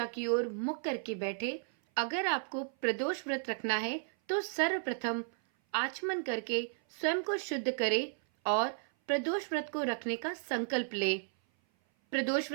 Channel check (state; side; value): silent; left; 55 dB below the other